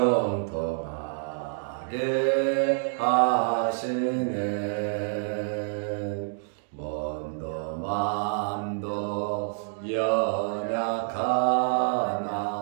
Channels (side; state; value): left; silent; digital silence